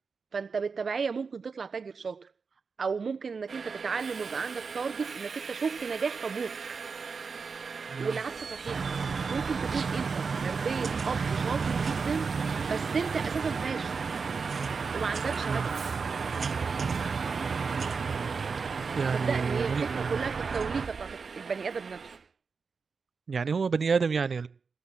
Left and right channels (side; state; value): left; quieter; 5.1 dB